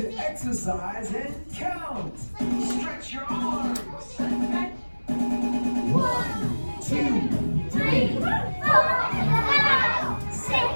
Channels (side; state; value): both; inverted; correlation -1.00